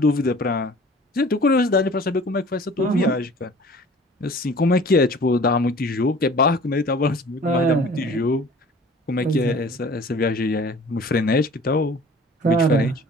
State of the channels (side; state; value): both; normal; correlation 0.47